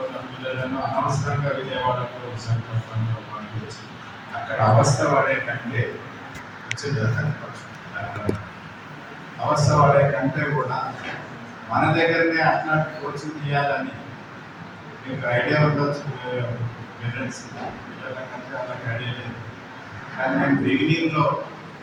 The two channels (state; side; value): identical; both; correlation 1.00